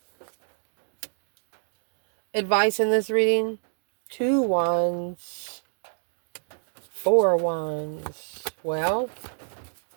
Advice in this reading. 2 Wands. 4 Wands. Well,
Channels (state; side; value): silent; left; digital silence